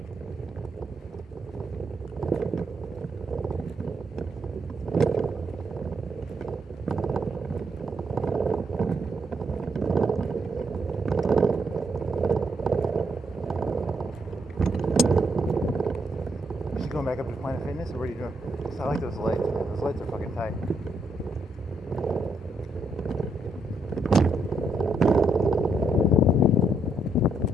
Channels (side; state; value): both; normal; correlation 0.76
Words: Going back up to Planet Fitness, or what are you doing? I like those lights. Those lights are fucking tight.